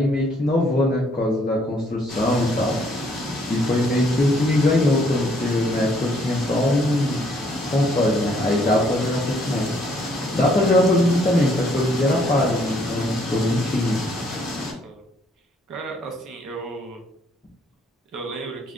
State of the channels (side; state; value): both; normal; correlation 0.66